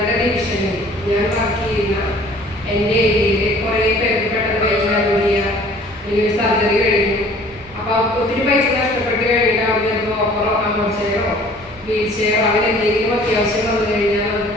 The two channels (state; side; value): normal; both; correlation 0.52